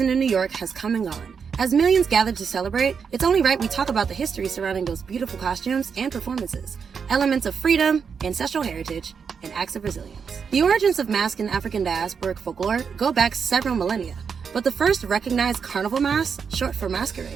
in New York has come and gone. As millions gather to celebrate, it's only right we talk about the history surrounding those beautiful costumes and performances, elements of freedom, ancestral heritage, and acts of resilience. The origins of mask in African diasporic folklore go back several millennia, but the first recognized carnival mask, short for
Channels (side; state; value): left; quieter; 6.3 dB